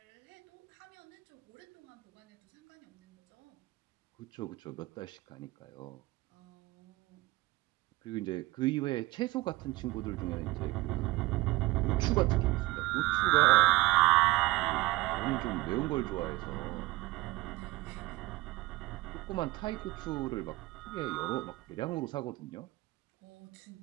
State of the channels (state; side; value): quieter; left; 20.0 dB